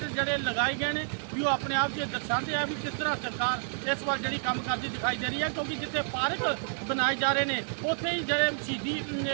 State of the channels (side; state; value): left; silent; digital silence